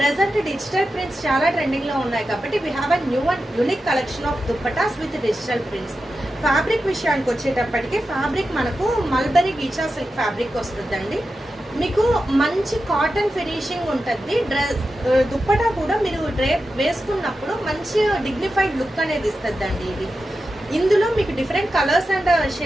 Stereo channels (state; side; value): normal; both; correlation 0.91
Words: డిజిటల్ ప్రింట్స్ చాలా ట్రెండింగ్ లో ఉన్నాయి కాబట్టి we have a new and unique collection of dupattas with digital prints. Fabric విషయానికి వచ్చేటప్పటికి ఫ్యాబ్రిక్ మనకు మల్బరీ గీచా సిల్క్ ఫ్యాబ్రిక్ వస్తుందండి. మీకు మంచి కాటన్ ఫినిషింగ్ ఉంటుంది. దుప్పటా కూడా మీరు డ్రేప్ వేసుకున్నప్పుడు మంచి డిగ్నిఫైడ్ లుక్ అనేది ఇస్తుందండి. ఇది ఇందులో మీకు different colours and